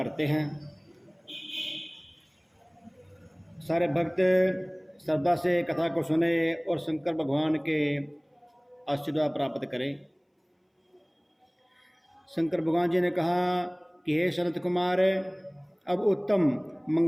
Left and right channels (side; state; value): both; identical; correlation 1.00